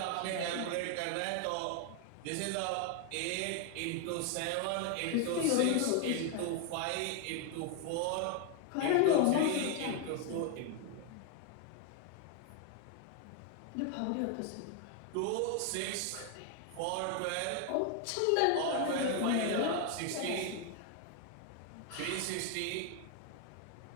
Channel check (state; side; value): different; both; correlation 0.00